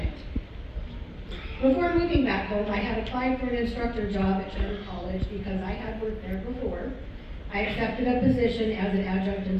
Before moving back home, I had applied for an instructor job at Charter College because I had worked there before. I accepted a position as an adjunct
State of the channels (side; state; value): both; identical; correlation 1.00